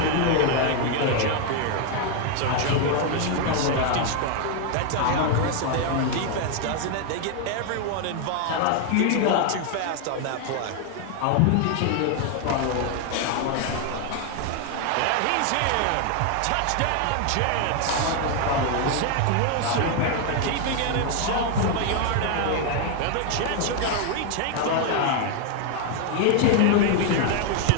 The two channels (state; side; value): different; both; correlation 0.01